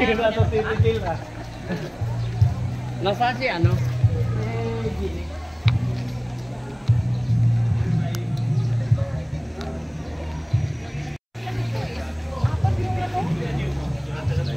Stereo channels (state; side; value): identical; both; correlation 1.00